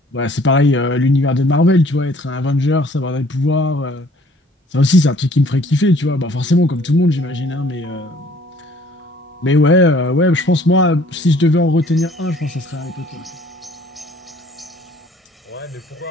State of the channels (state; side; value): normal; both; correlation 0.57